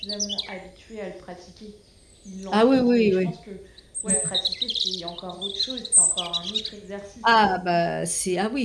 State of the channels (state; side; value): identical; both; correlation 1.00